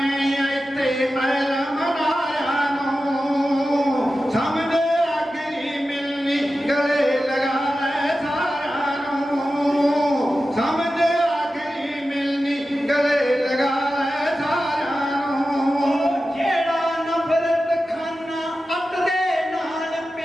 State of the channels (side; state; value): both; normal; correlation 0.93